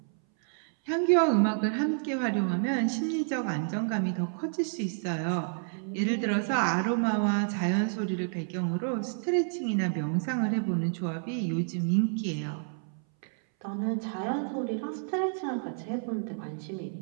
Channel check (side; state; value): left; silent; 58 dB below the other